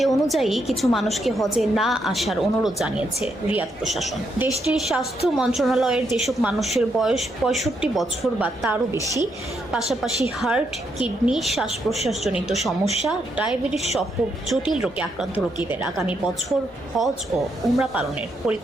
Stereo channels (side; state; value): both; normal; correlation 0.78